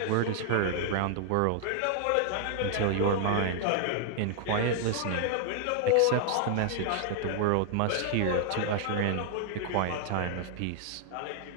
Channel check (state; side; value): different; both; correlation 0.00